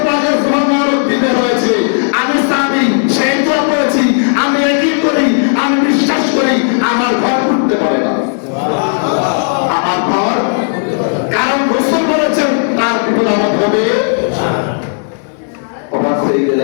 পাকের সুন্নাহর দিতে হয়েছে। আমি সাহাবী সেই দোয়া পড়েছি, আমি একই করি, আমি বিশ্বাস করি আমার ঘর পড়তে পারে না। সুবহানাল্লাহ। আমার ঘর, কারণ রাসূল বলেছেন তার বিপদ আমার হবে না। অবাক হয়ে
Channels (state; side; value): silent; right; 66 dB below the other